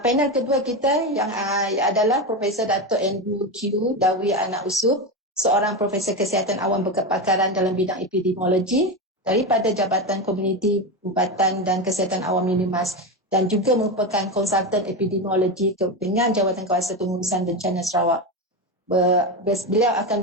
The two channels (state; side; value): normal; both; correlation 0.16